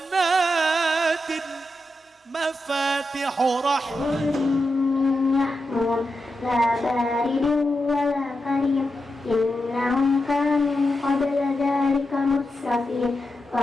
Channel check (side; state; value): both; normal; correlation 0.88